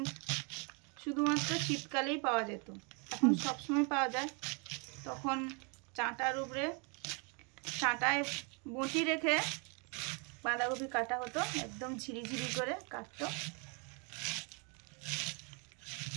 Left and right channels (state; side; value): quieter; left; 34.5 dB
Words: শুধুমাত্র শীতকালেই পাওয়া যেত, এখন সবসময় পাওয়া যায়। তখন চাটার উপরে চাটায় বঁটি রেখে বাঁধাকপি কাটা হতো, একদম ঝিরিঝিরি করে কাটতো।